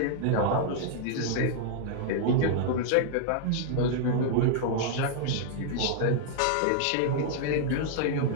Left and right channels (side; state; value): both; different; correlation -0.01